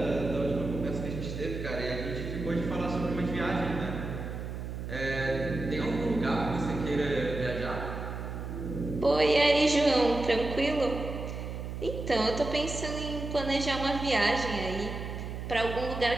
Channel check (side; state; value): right; noise; hum, 6 dB below the sound